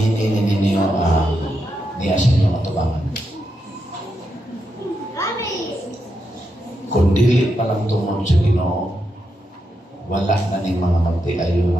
ninyo niya sa inyong atubangan. Kung dili pa lang tungod sa Ginoo, wala na ning mga magtiayo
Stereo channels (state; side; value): normal; both; correlation 0.84